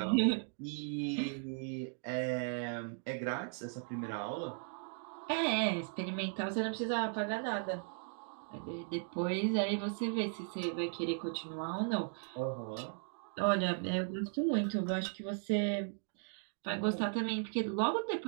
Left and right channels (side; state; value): left; silent; 53 dB below the other